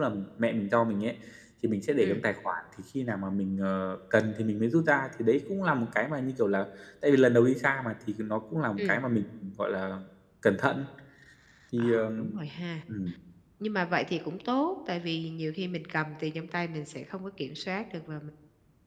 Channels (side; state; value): both; identical; correlation 1.00